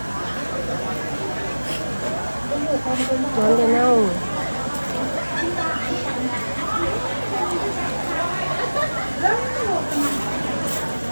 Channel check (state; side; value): inverted; both; correlation -1.00